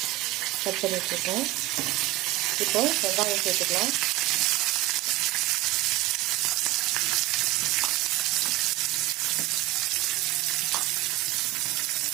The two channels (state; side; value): quieter; left; 18.2 dB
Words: கட் பண்ணி வச்சுருக்கோம். இப்போ வெங்காயம் சேர்த்துக்கலாம்.